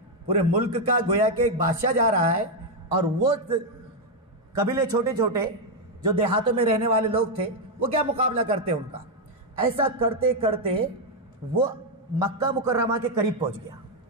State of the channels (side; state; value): both; normal; correlation 0.02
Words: پورے ملک کا گویا کہ ایک بادشاہ جا رہا ہے، اور وہ قبیلے چھوٹے چھوٹے جو دیہاتوں میں رہنے والے لوگ تھے وہ کیا مقابلہ کرتے ان کا. ایسا کرتے کرتے وہ مکہ مکرمہ کے قریب پہنچ گیا.